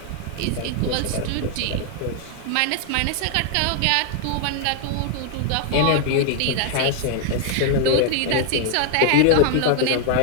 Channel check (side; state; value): both; different; correlation 0.00